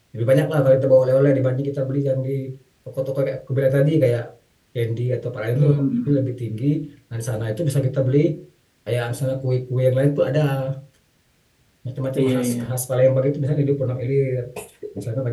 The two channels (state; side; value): identical; both; correlation 1.00